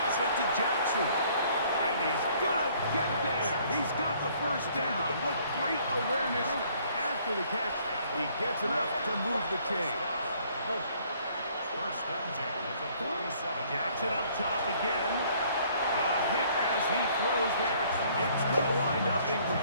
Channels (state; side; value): inverted; both; correlation -0.61